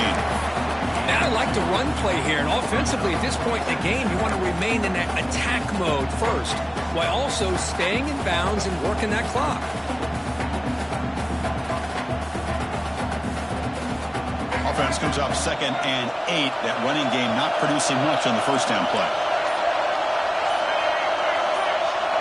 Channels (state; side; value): identical; both; correlation 1.00